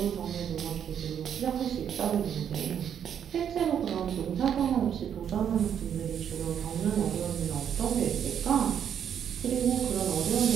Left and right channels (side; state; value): left; quieter; 8.7 dB